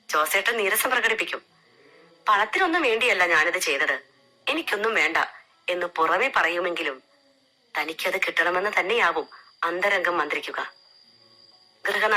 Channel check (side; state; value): both; identical; correlation 1.00